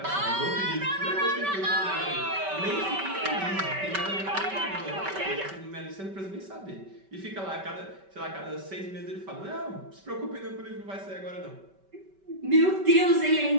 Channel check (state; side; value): late; left; 5.2 ms